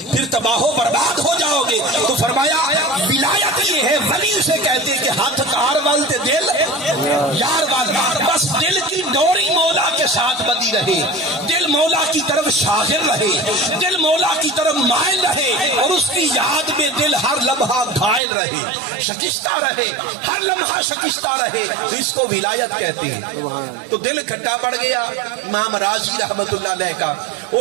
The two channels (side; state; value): left; drops out; at 18.2 s